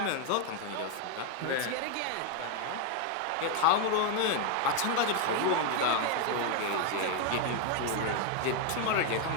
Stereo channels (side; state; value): both; different; correlation 0.01